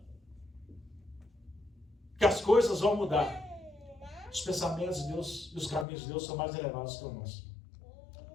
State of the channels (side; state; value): right; drops out; at 5.9 s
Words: que as coisas vão mudar. Os pensamentos de Deus e os caminhos de Deus são mais elevados que o nosso.